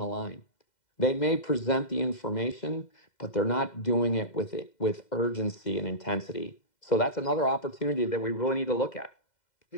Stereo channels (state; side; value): late; right; 2.0 ms